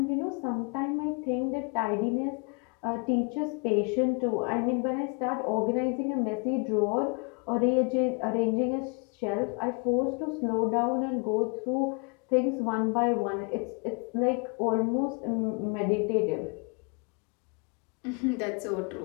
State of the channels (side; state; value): right; quieter; 34.6 dB